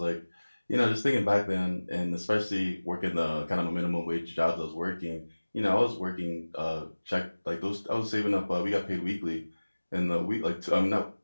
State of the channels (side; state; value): both; inverted; correlation -1.00